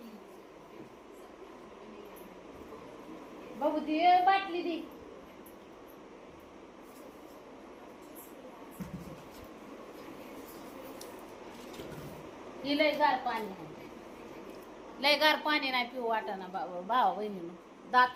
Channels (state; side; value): identical; both; correlation 1.00